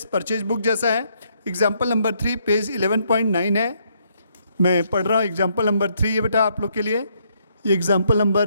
purchase book जैसा है। एग्जाम्पल नंबर 3 पेज 11.9 है। मैं पढ़ रहा हूँ एग्जाम्पल नंबर 3 है बेटा आप लोग के लिए। एग्जाम्पल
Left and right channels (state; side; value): inverted; both; correlation -0.72